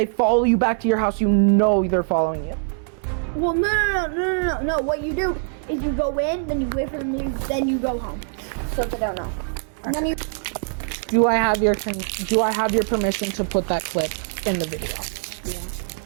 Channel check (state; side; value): silent; left; 63 dB below the other